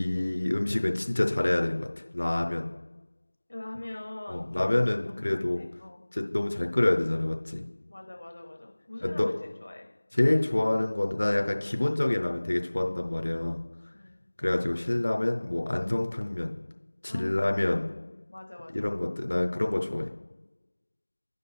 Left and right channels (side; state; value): both; inverted; correlation -1.00